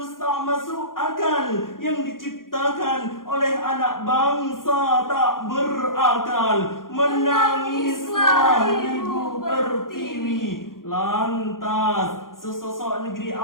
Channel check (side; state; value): right; late; 0.90 ms